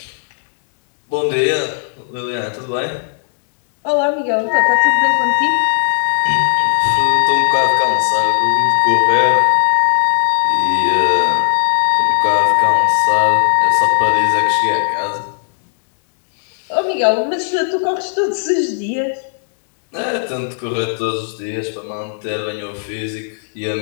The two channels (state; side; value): silent; right; digital silence